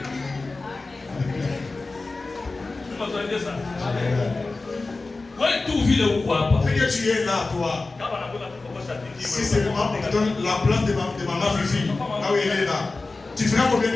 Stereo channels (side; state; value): right; quieter; 3.5 dB